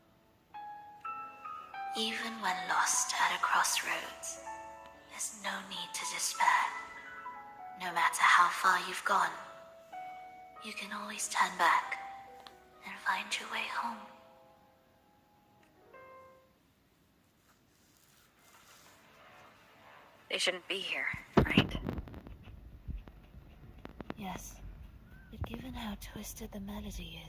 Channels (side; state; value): both; identical; correlation 1.00